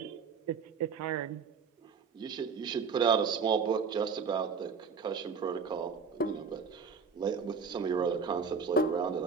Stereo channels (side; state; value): left; quieter; 5.7 dB